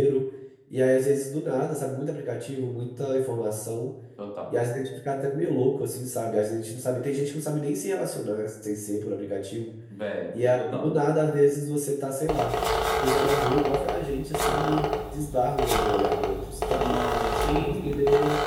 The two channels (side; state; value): both; identical; correlation 1.00